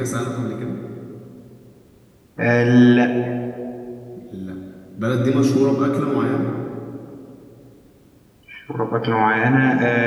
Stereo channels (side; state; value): both; identical; correlation 1.00